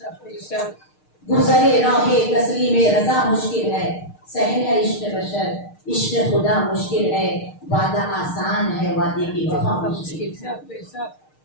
گزرے راہ تسلیم رضا مشکل ہے, سہل ہے عشق بشر, عشق خدا مشکل ہے. وعدہ آسان ہے, وعدے کی وفا مشکل.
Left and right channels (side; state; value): right; late; 6.5 ms